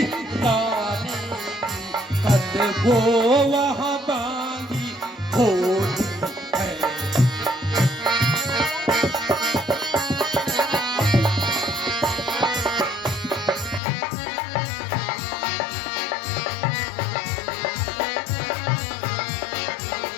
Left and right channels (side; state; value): right; drops out; at 13.8 s